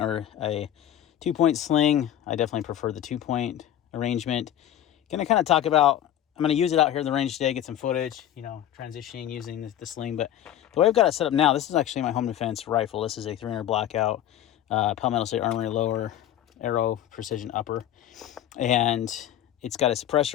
or a 2-point sling. I definitely prefer the 2-point arrangement. Gonna kind of talk about, I'm gonna use it out here in the range today, get some footage, you know, transitioning using the sling. But the way I've got it set up now, this is actually my home defense rifle. This is a 300 blackout, Palmetto State Armory lower, arrow precision upper. And it's got a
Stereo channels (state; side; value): quieter; right; 11.4 dB